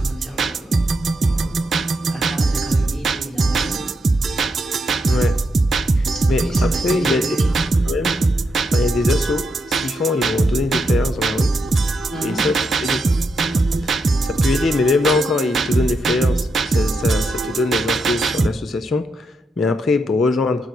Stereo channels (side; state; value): both; normal; correlation 0.82